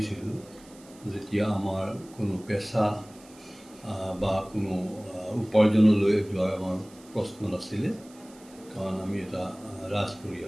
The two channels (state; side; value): noise; right; hiss, 24 dB below the sound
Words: যেতিয়া আমাৰ কোনো পেচা বা কোনো উপাৰ্জনলৈ যোৱাৰ আমাৰ প্ৰশ্ন নাছিলে, কাৰণ আমি এটা ৰাজ